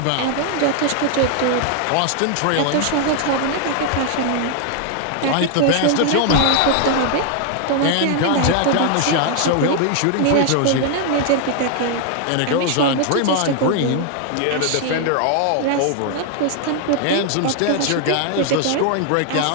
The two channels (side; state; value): both; different; correlation 0.00